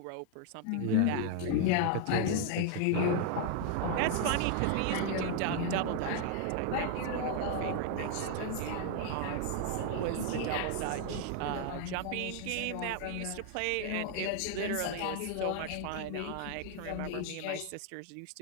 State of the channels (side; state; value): both; different; correlation 0.00